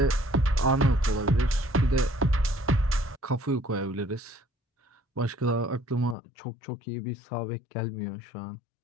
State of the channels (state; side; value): drops out; right; at 6.2 s